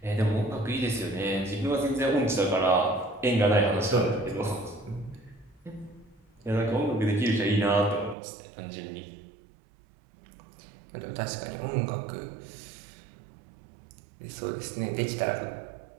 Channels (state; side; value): drops out; left; at 8.2 s